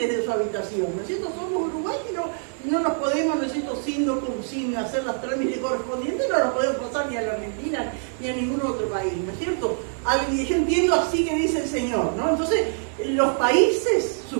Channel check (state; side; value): silent; left; digital silence